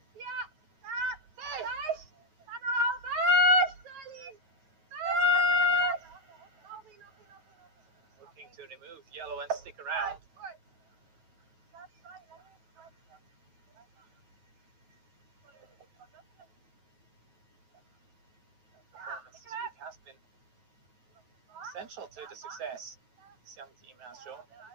Looking to remove yellow and stick around. Performance this week has been essential to the success this young team has shown.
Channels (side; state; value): left; late; 9.3 ms